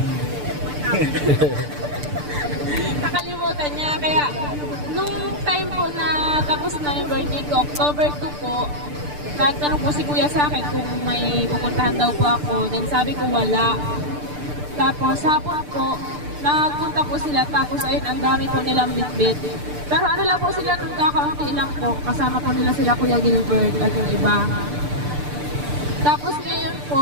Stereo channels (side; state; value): left; late; 6.8 ms